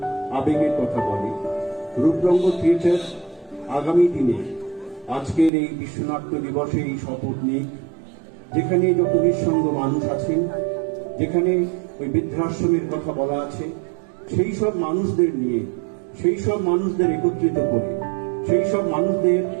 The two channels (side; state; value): left; drops out; at 5.5 s